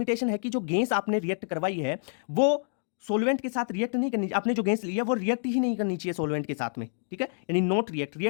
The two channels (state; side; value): silent; right; digital silence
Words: है कि जो गैस आपने रिएक्ट करवाई है वो सोलवेंट के साथ रिएक्ट नहीं करनी, आपने जो गैस ली है वो रिएक्ट ही नहीं करनी चाहिए सोलवेंट के साथ में। ठीक है, यानी नॉट